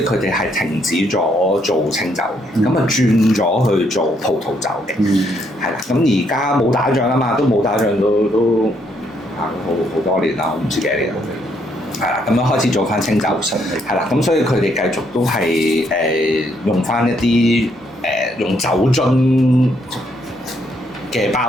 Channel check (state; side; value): normal; both; correlation 0.72